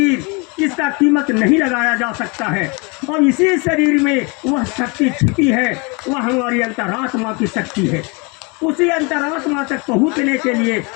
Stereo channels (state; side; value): quieter; right; 30.3 dB